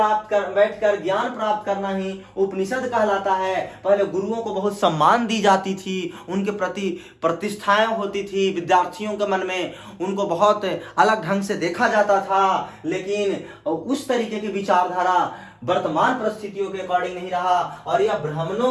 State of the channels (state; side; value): identical; both; correlation 1.00